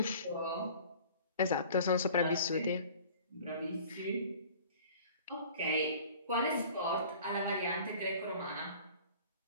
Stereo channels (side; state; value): both; inverted; correlation -0.46